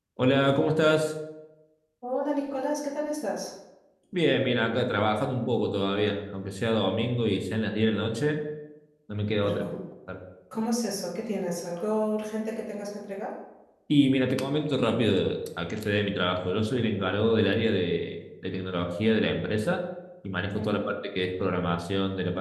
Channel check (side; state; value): both; identical; correlation 1.00